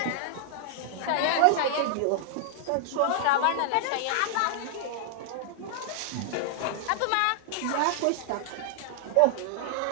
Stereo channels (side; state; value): both; different; correlation -0.01